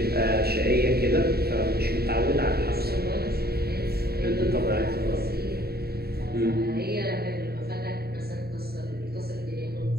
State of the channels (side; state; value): left; late; 0.46 ms